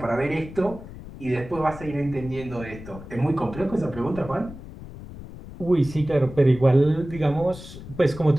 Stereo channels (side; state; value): left; noise; rumble, 14 dB below the sound